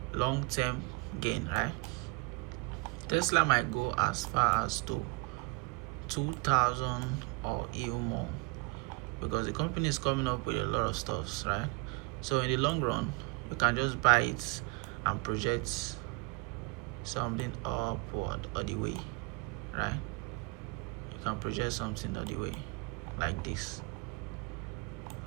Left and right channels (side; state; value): left; quieter; 26.6 dB